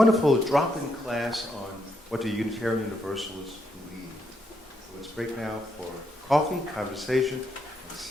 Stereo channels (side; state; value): both; normal; correlation 0.78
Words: drop-in class on what the Unitarian Universalists believe. So let's break now for coffee, conversation, and